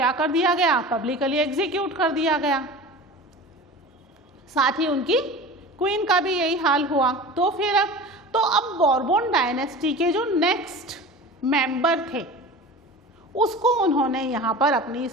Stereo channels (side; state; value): both; normal; correlation 0.35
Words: कर दिया गया? पब्लिकली एग्जीक्यूट कर दिया गया। साथ ही उनकी क्वीन का भी यही हाल हुआ। तो फिर अब बोरबोन डायनेस्टी के जो नेक्स्ट मेंबर थे उसको उन्होंने यहाँ पर अपनी